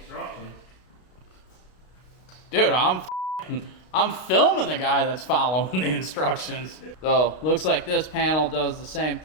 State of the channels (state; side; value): late; right; 32 ms